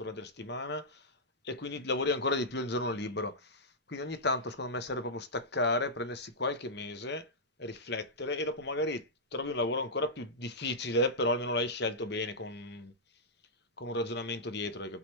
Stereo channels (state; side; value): normal; both; correlation -0.09